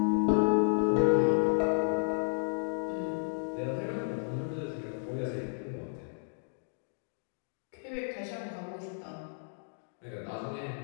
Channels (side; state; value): right; silent; digital silence